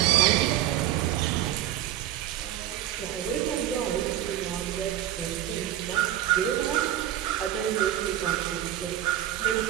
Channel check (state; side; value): quieter; left; 12.3 dB